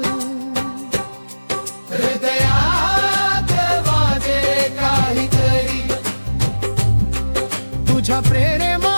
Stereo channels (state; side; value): inverted; both; correlation -1.00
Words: हृदयात वाजे काहीतरी तुझ्या